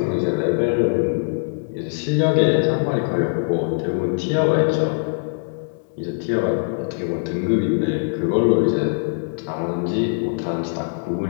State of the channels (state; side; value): silent; right; 62 dB below the other